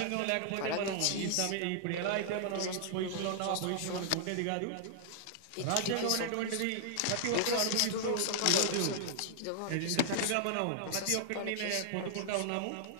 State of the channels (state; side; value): different; both; correlation -0.01